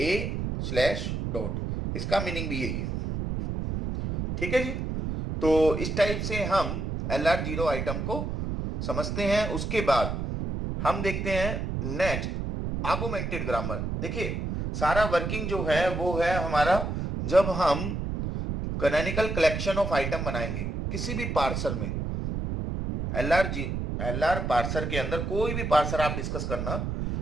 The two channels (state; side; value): noise; right; rumble, 3 dB below the sound